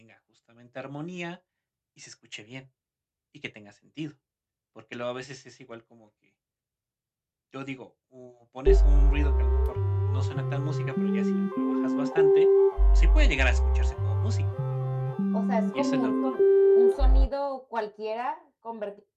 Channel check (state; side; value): identical; both; correlation 1.00